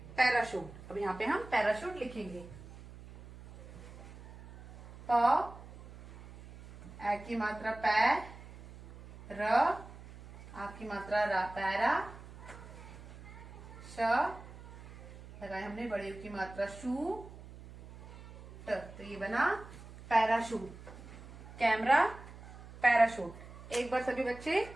पैराशूट। अब यहाँ पे हम पैराशूट लिखेंगे। प, ए की मात्रा पै, र, आ की मात्रा रा, पैरा, श, लगाए हमने बड़े की मात्रा शू, ट, तो ये बना पैराशूट। Camera, parachute. एक बार सभी बच्चे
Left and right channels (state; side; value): noise; right; hum, 16 dB below the sound